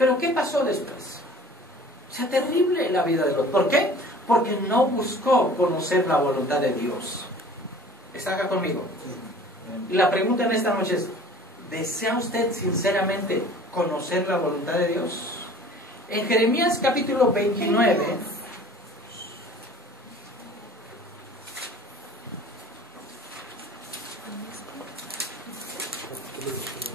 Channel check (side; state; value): both; normal; correlation 0.47